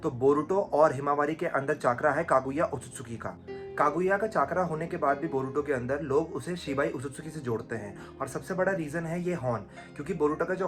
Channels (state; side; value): identical; both; correlation 1.00